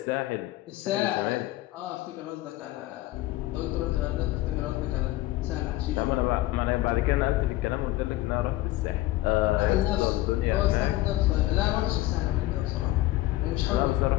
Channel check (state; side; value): quieter; right; 16.8 dB